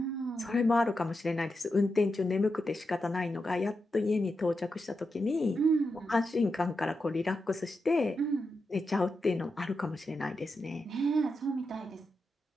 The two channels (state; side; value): normal; both; correlation 0.87